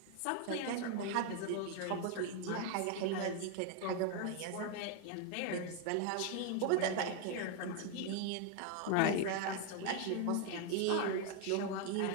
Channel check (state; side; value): different; both; correlation 0.00